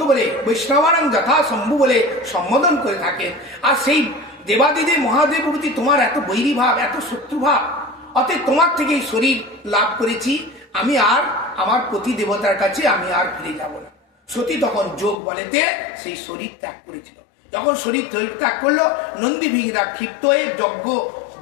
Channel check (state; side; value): drops out; right; at 15.2 s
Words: বলে, বৈষ্ণবানাং যথা শম্ভু বলে সম্বোধন করে থাকেন, আর সেই দেবাদিদেব মহাদেব প্রতি তোমার এত বৈরী ভাব, এত শত্রুভাব, অতএব তোমার থেকে এই শরীর লাভ করেছি, আমি আর আমার প্রতি দেবতার কাছে আমি আর ফিরে যাব না। সতী তখন যোগ বলেতে সেই শরীর ত্যাগ করেছিল। যখন শরীর ত্যাগ করলো, নন্দীভিঙ্গরা ক্ষিপ্ত হয়ে